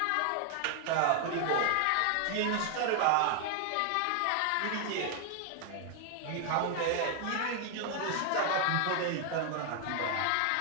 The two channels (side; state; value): both; different; correlation 0.00